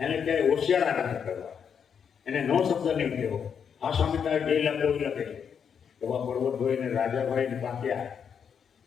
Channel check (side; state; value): right; quieter; 7.3 dB